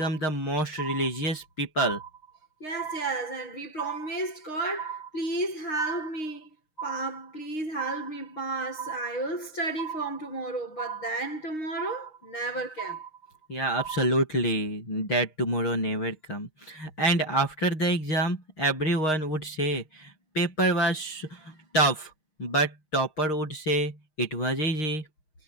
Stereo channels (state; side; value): late; right; 6.4 ms